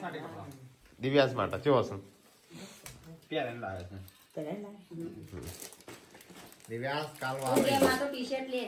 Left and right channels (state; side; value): identical; both; correlation 1.00